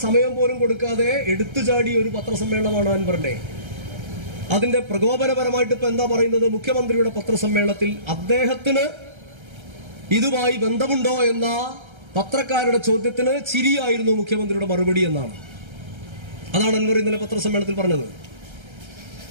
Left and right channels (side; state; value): left; late; 1.3 ms